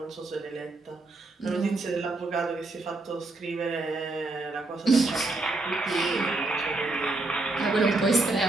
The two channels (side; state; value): left; quieter; 3.1 dB